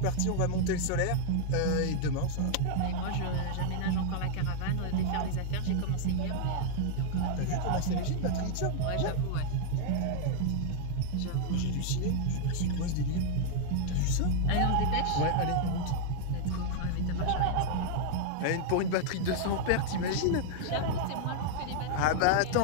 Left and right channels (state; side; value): different; both; correlation -0.01